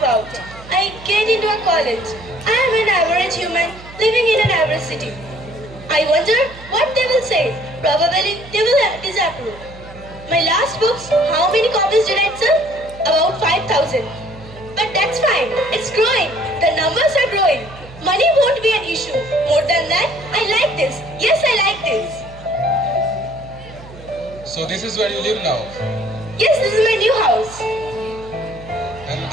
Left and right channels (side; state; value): right; noise; hum, 18 dB below the sound